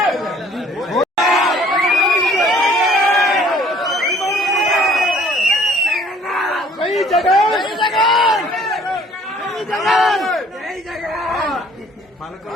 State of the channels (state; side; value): normal; both; correlation 0.56